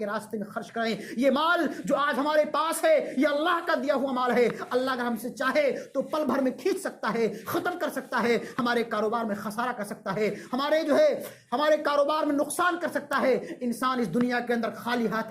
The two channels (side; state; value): both; identical; correlation 1.00